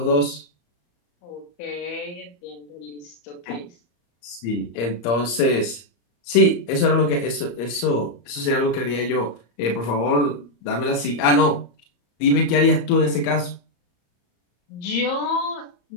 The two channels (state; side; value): late; right; 34 ms